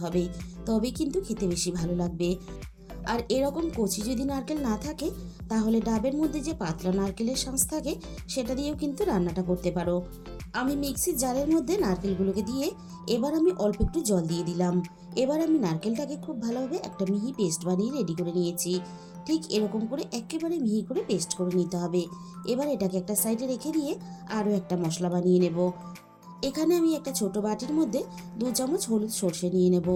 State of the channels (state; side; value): identical; both; correlation 1.00